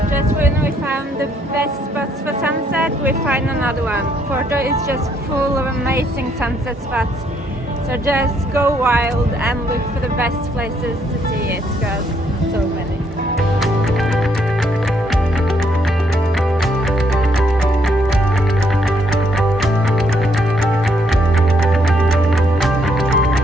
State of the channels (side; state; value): both; normal; correlation 0.71